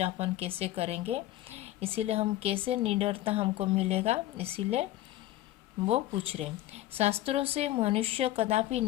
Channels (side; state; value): right; quieter; 14.9 dB